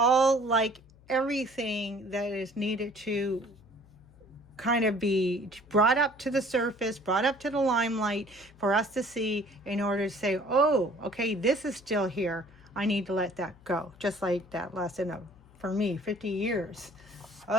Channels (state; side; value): noise; left; hum, 26 dB below the sound